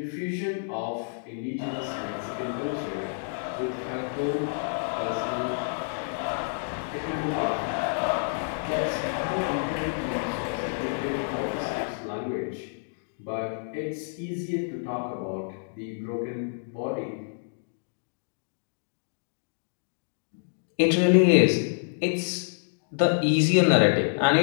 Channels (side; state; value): right; silent; digital silence